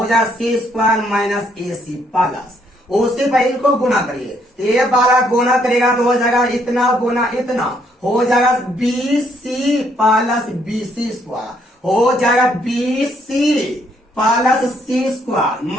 जाएगा सी square minus A C plus. उसी पर इनको गुना करिए ए वाला गुना करेगा तो हो जाएगा इतना गुना इतना हो जाएगा B C plus B C square हो जाएगा B C plus C square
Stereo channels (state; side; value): normal; both; correlation 0.70